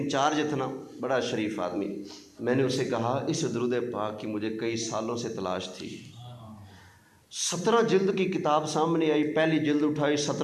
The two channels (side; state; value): both; identical; correlation 1.00